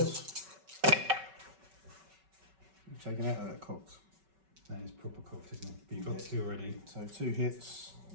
4s. Taken out of that cox. That is proper cooked, isn't it? But you've got 2 already. So 2 hits,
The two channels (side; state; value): left; late; 5.3 ms